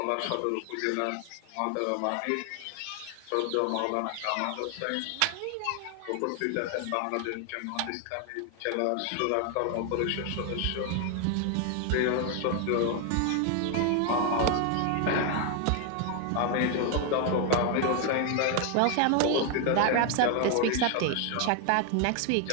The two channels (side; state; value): both; different; correlation 0.01